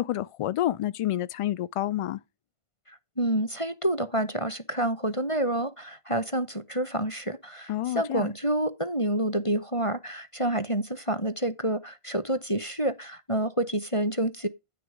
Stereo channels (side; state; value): right; late; 1.5 ms